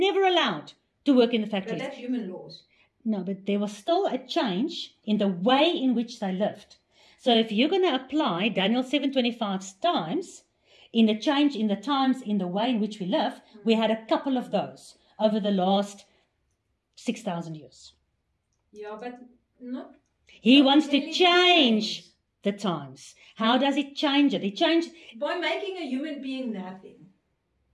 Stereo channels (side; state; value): both; identical; correlation 1.00